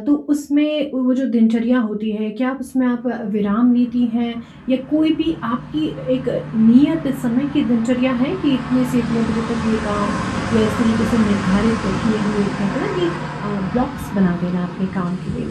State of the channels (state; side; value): identical; both; correlation 1.00